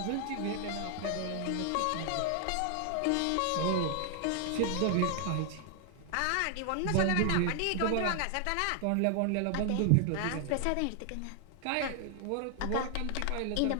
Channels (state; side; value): different; both; correlation 0.00